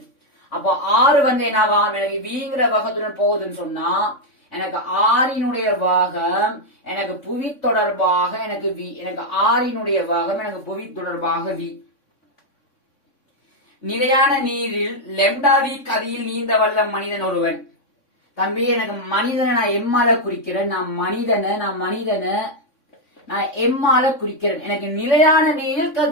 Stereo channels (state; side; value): late; right; 3.6 ms